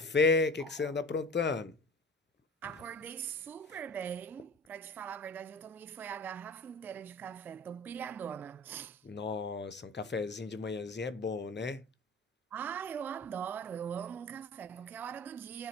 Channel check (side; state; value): both; normal; correlation 0.39